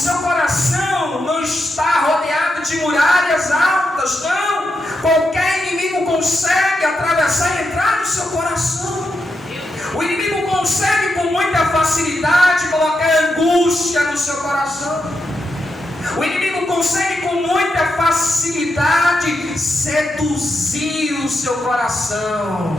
coração não está rodeado de muralhas altas, não. Qualquer inimigo consegue atravessar e entrar no seu coração. O inimigo consegue com muita facilidade colocar angústia no seu coração. O inimigo consegue com muita facilidade seduzir o seu coração,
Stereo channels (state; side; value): normal; both; correlation 0.85